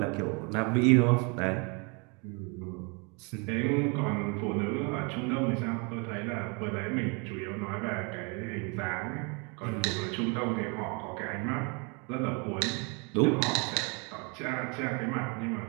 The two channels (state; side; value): quieter; left; 32.7 dB